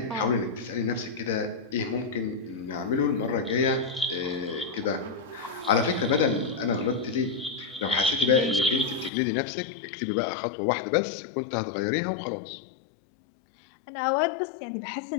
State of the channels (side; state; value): right; drops out; at 9.1 s